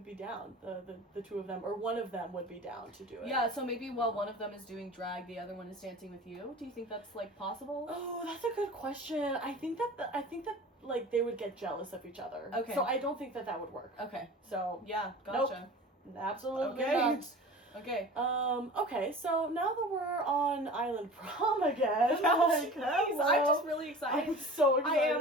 be down. The two of them, or one of them would be down to do it. Yeah, so maybe while one of them is doing drag, the other one is dancing with you. Do you think that's like possible? Oh, that's a good question. I think that like they would get jealous of each other. Okay. So I don't think that would work. Okay. So Yeah, gotcha. Absolutely Okay. not. Okay. Okay, so now that we're on Island Prom again, Jeez, I'm just really excited. I'm so excited. I am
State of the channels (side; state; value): both; normal; correlation 0.39